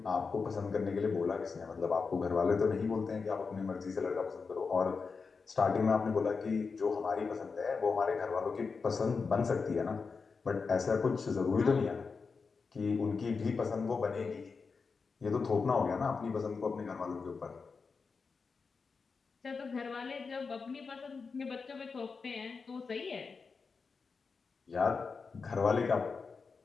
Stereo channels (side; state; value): right; quieter; 4.9 dB